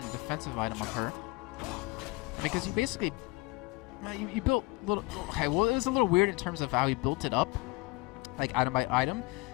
a defensive item on her. I mean, because you basically, you built a little, okay, well, it was a little weird in terms of how he built it up, like item by item.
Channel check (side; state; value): right; quieter; 24.1 dB